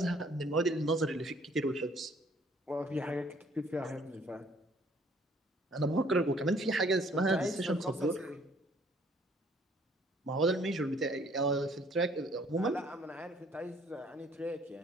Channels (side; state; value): both; normal; correlation 0.60